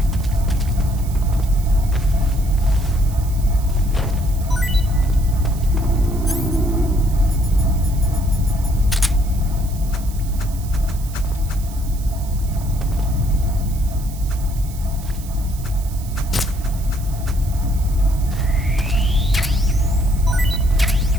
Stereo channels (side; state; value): right; noise; hiss, 18 dB below the sound